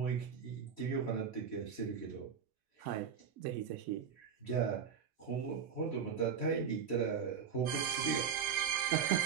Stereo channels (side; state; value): left; quieter; 7.0 dB